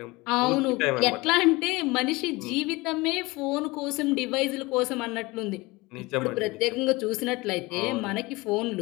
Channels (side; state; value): right; quieter; 22.6 dB